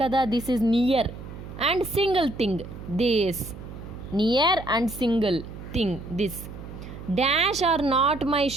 కదా, this is near and single thing this. Near and single thing this. Dash are not my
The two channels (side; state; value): right; noise; hum, 12 dB below the sound